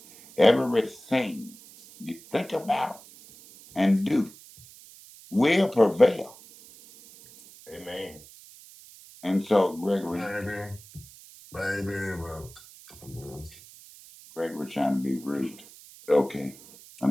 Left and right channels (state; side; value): noise; right; hiss, 21 dB below the sound